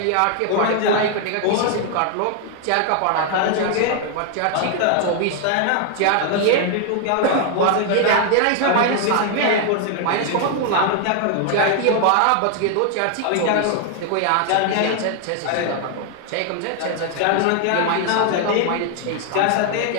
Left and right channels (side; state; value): both; different; correlation 0.00